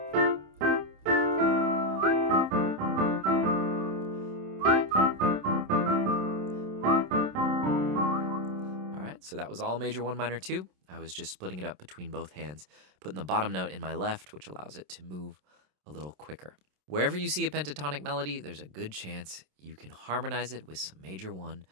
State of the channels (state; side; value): late; left; 27 ms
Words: So that was all major 1, minor 2. I was just splitting it up between both hands, putting the bottom note in my left, which allows it to move a little quicker. Wherever you see a pentatonic melody, there's a good chance you can harmonize it with some major 1